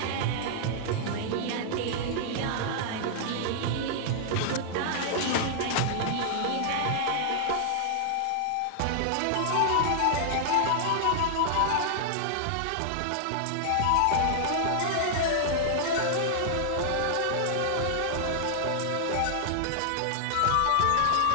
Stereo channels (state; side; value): different; both; correlation -0.01